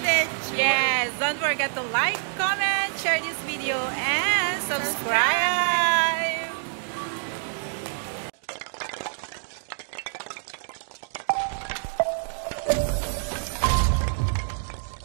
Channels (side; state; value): left; silent; digital silence